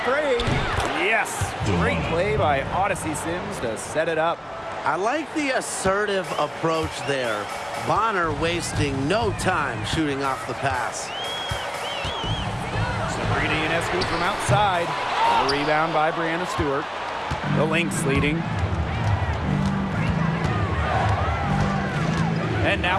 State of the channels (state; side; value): identical; both; correlation 1.00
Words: three. Yes, great play by Odyssey Sims to set it up. I like the assertive approach there. Bonner wasting no time shooting off the pass. Sabrina Ionescu from outside. A rebound by Brianna Stewart. The Lynx leading. And